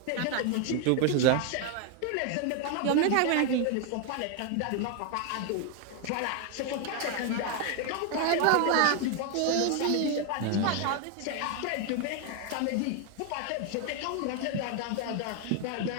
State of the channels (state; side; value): different; both; correlation 0.01